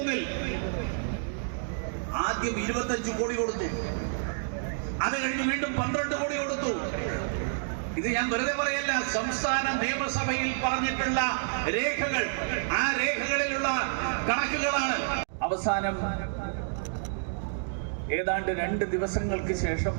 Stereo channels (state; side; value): silent; left; digital silence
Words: ആദ്യം 25 കോടി കൊടുത്തു. അത് കഴിഞ്ഞ് വീണ്ടും 12 കോടി കൊടുത്തു. ഇത് ഞാൻ വെറുതെ പറയല്ല, സംസ്ഥാന നിയമസഭയിൽ പറഞ്ഞിട്ടുള്ള രേഖകൾ, ആ രേഖകളിലുള്ള കണക്കുകളാണ്. അവസാനം ഏതാണ്ട് 2 ദിവസങ്ങൾക്ക് ശേഷം